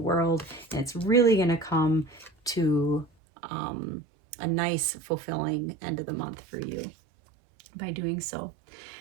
and it's really going to come to a nice, fulfilling end of the month for you by doing so.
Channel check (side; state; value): left; drops out; at 3.1 s